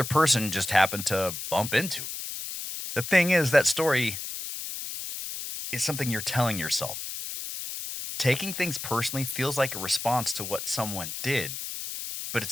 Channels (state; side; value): noise; left; hiss, 7 dB below the sound